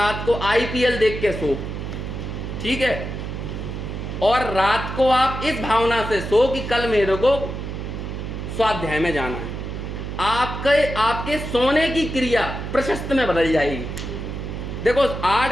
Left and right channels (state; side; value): noise; right; hum, 6 dB below the sound